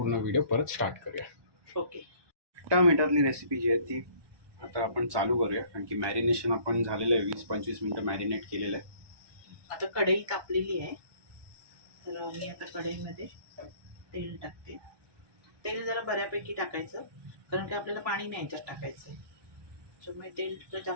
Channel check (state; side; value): late; left; 1.2 ms